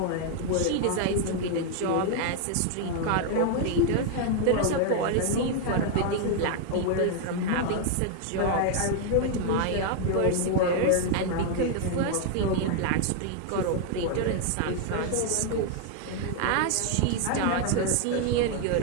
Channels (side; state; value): both; different; correlation 0.00